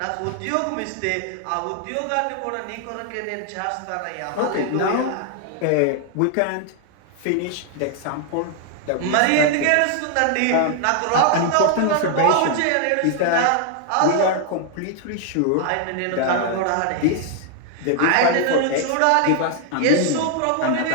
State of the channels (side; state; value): both; different; correlation 0.00